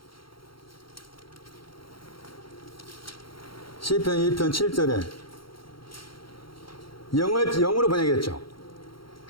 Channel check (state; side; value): late; right; 0.73 ms